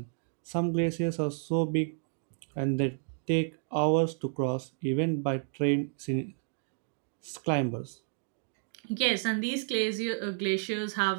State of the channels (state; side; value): silent; left; 57 dB below the other